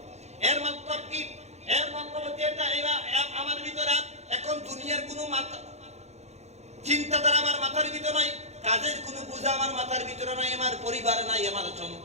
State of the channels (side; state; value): left; late; 0.32 ms